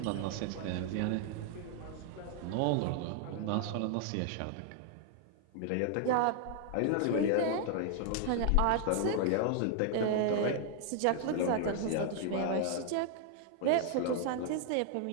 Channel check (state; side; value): different; both; correlation 0.00